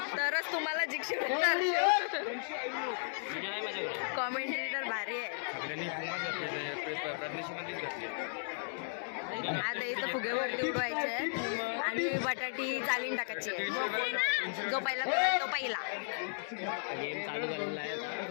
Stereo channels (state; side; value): silent; right; digital silence